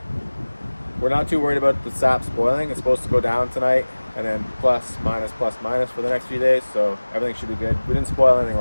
we're not too worried about the sap spoiling. It's supposed to go down tonight and then plus minus for the next few days, so everything should be good. We didn't spoil anything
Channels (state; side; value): inverted; both; correlation -1.00